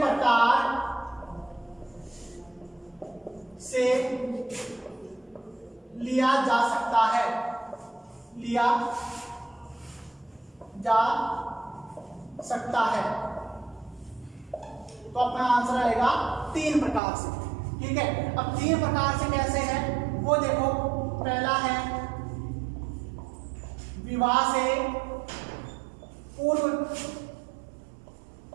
से लिया जा सकता है? लिया जा सकता है। तो अपना आंसर आएगा 3 प्रकार से। ठीक है, अब 3 प्रकार से कैसे है वो देखो। पहला है विवाह से पूर्व,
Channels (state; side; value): drops out; left; at 17.0 s